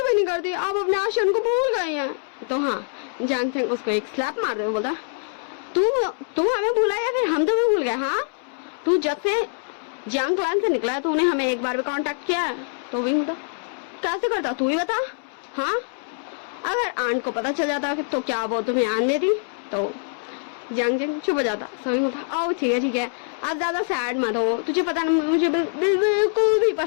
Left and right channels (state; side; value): silent; right; 63 dB below the other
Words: भी नहीं करती, आप अपने आशियान को भूल गई हैं। तो हाँ जांग चंग उसको एक स्लैप मार दे, बोलता तू हमें भूला या फिर हम तुम्हें भूल गए? हाँ, तू जब से जियांग क्लैन से निकला है तूने हमें एक बार भी कांटेक्ट किया है? तो विंग बोलता कैसे करता तू ही बता। हाँ, अगर आंट को पता चल जाता तो क्या वो तुम्हें आन देती? तो जियांग चंग चुप हो जाता। सो विंग बोलता ओ ठीक है आप ज्यादा सैड मत हो, तुझे पता ना मुझे बिल्कुल भी